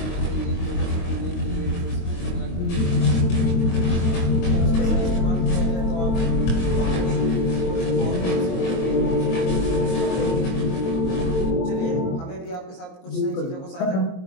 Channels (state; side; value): late; right; 22 ms